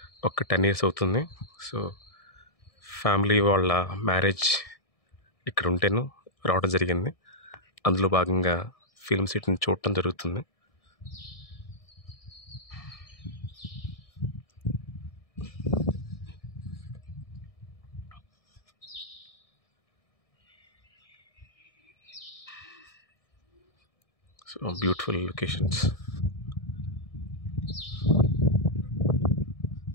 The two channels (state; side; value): late; right; 1.6 ms